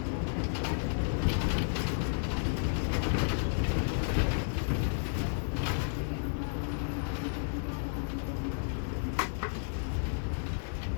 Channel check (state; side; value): silent; right; digital silence